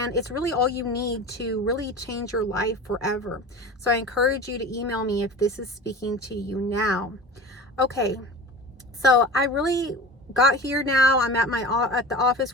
it's really all you need to really change your life forever. So I encourage you to email me if this is speaking to you now. Okay, so I really got here now. I'm at the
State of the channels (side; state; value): both; normal; correlation 0.34